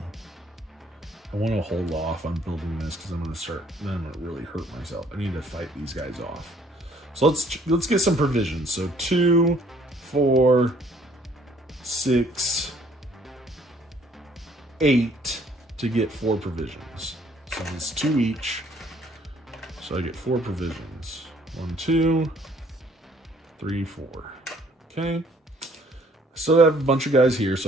I want to hold off on building this because I'm going to really hurt myself. I need to fight these guys off. So let's get some provisions. So 2, 4, 6, 8 to get 4 provisions. So it's 2 each. So I get 4 provisions. 1, 2, 3, 4. Okay. So I have a bunch of guys here,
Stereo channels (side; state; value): both; normal; correlation 0.61